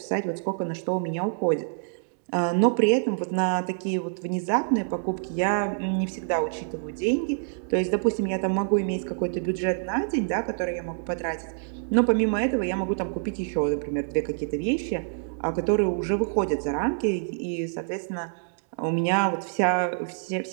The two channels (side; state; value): left; silent; digital silence